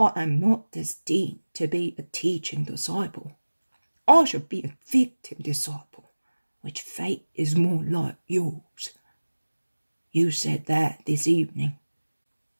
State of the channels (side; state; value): both; inverted; correlation -1.00